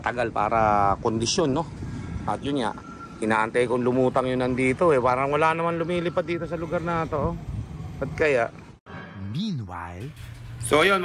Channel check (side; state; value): both; identical; correlation 1.00